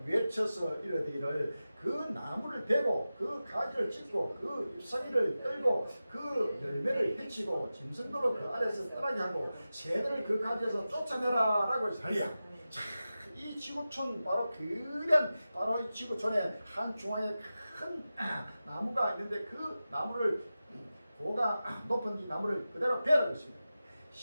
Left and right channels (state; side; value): inverted; both; correlation -0.94